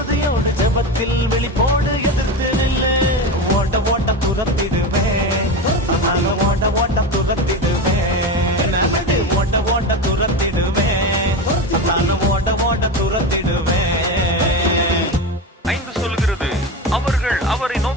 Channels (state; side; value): normal; both; correlation 0.21